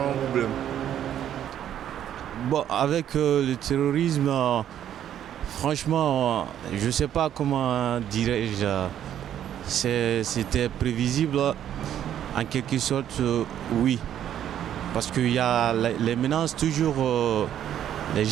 problème. Bon, avec le terrorisme, franchement, je ne sais pas comment dirais-je. C'était prévisible, en quelque sorte, oui. Parce qu'il y a les menaces toujours. Les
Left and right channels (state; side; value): quieter; left; 10.5 dB